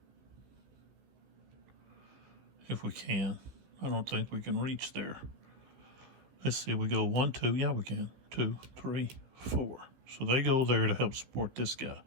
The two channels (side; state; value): left; late; 15 ms